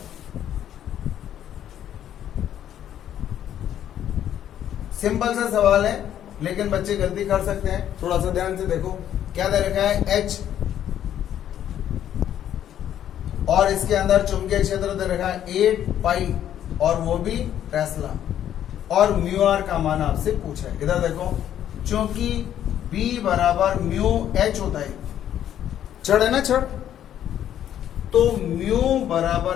सिंपल सा सवाल है लेकिन बच्चे गलती कर सकते हैं। थोड़ा सा ध्यान से देखो क्या दे रखा है, H, और इसके अंदर चुंबकीय क्षेत्र दे रखा है 8 पाई और वो भी टेस्ला, और म्यू आर का मान आपसे पूछा है। इधर देखो, चूंकि B बराबर म्यू H होता है, छड़ है ना छड़, तो म्यू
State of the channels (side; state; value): right; quieter; 10.7 dB